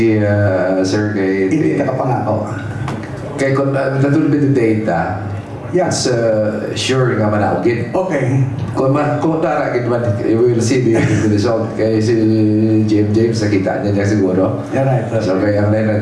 sir, Hindi ka kapangako. kay kung natulog yung data, Yes. sure nga manaogin. Okay. Kung taragin man, we will see the result. Kaya si James, nakita niya siguro. Yeah, right. So kaya ang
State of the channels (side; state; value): both; identical; correlation 1.00